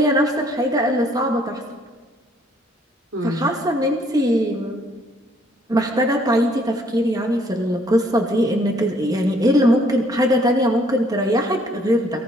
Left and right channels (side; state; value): both; normal; correlation 0.64